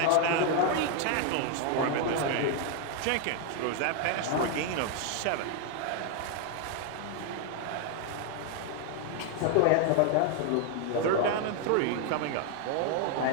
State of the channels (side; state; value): both; different; correlation 0.01